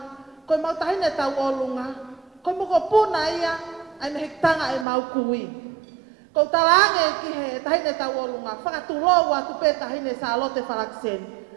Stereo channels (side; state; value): left; drops out; at 4.9 s